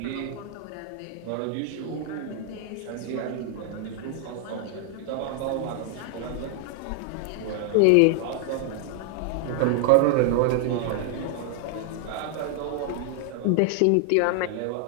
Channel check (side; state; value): both; different; correlation 0.00